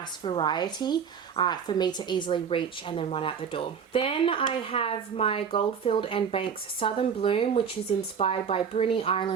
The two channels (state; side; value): quieter; left; 7.0 dB